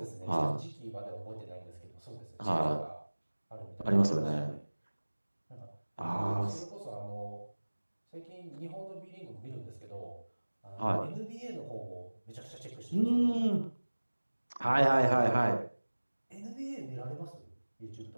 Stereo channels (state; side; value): inverted; both; correlation -1.00